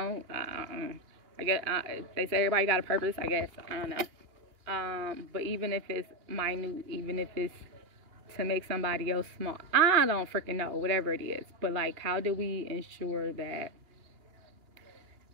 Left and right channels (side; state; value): left; late; 2.8 ms